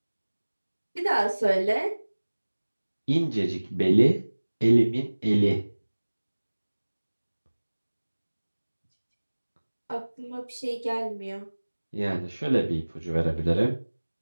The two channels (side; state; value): both; inverted; correlation -1.00